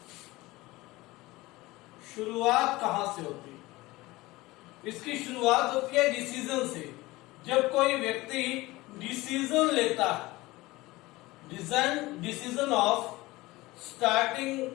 शुरुआत कहां से होती है? इसकी शुरुआत होती है डिसीजन से। जब कोई व्यक्ति डिसीजन लेता है, decision of starting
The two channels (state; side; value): quieter; right; 20.1 dB